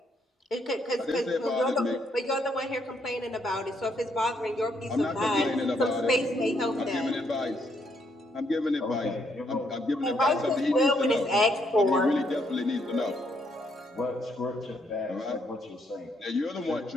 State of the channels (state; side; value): normal; both; correlation 0.73